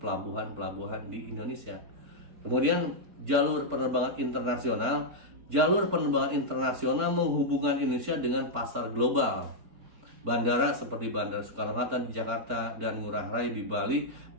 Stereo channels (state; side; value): late; left; 4.4 ms